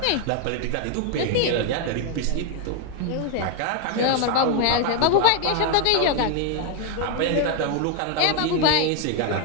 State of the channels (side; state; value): both; different; correlation 0.01